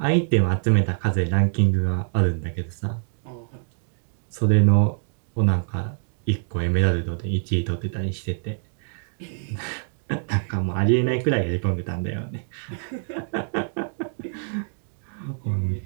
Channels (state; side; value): silent; left; digital silence